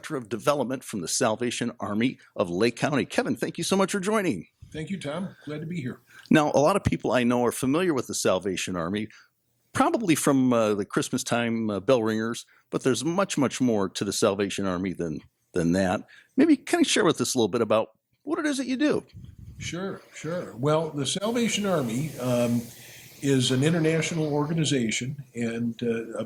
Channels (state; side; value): identical; both; correlation 1.00